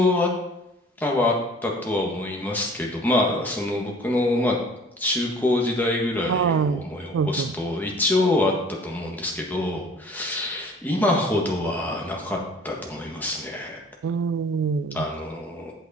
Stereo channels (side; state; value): both; normal; correlation 0.49